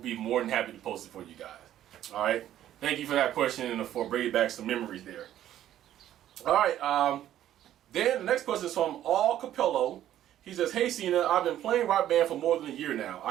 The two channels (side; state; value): left; quieter; 12.0 dB